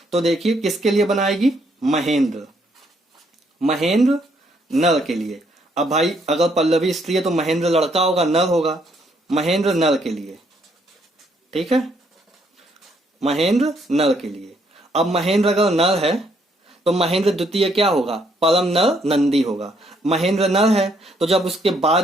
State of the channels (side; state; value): both; normal; correlation 0.70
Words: तो देखिए किसके लिए बनाएगी, महेंद्र, महेंद्र नर के लिए। अब भाई अगर पल्लवी स्त्री है तो महेंद्र लड़का होगा, नर होगा, महेंद्र नर के लिए, ठीक है, महेंद्र नर के लिए। अब महेंद्र अगर नर है तो महेंद्र द्वितीय क्या होगा, परम नर नंदी होगा। महेंद्र नर है तो जब उसके